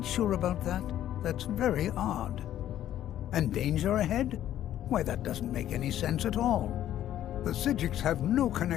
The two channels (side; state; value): right; quieter; 11.9 dB